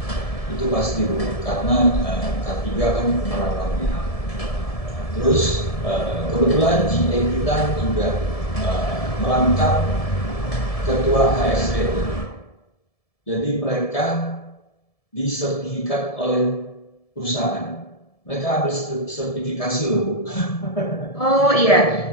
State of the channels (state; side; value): late; right; 1.7 ms